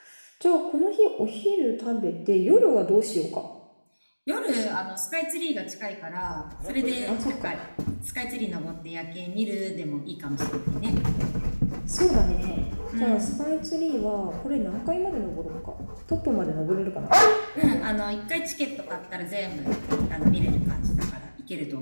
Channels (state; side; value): inverted; both; correlation -1.00